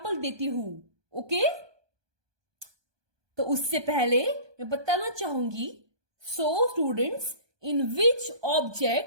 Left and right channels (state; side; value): late; left; 1.2 ms